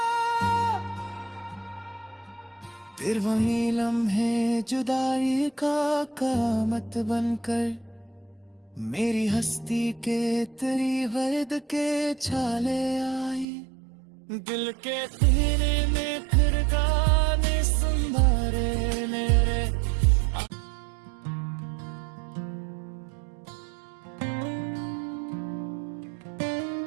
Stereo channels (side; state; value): left; drops out; at 13.5 s